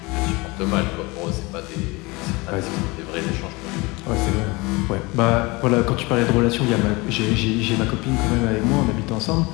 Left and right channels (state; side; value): quieter; right; 24.5 dB